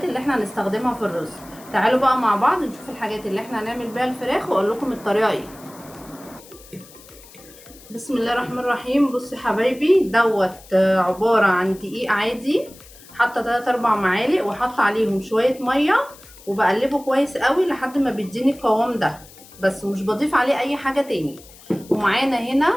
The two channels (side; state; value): left; noise; hiss, 22 dB below the sound